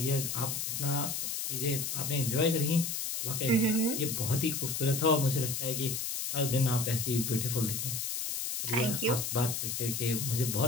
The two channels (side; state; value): left; noise; hiss, 2 dB below the sound